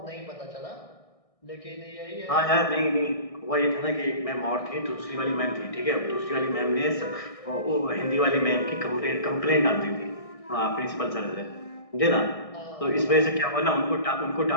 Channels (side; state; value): right; late; 1.6 ms